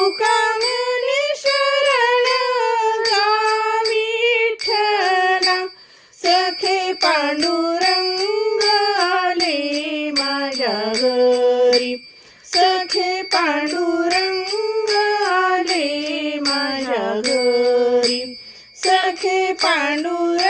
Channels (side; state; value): both; identical; correlation 1.00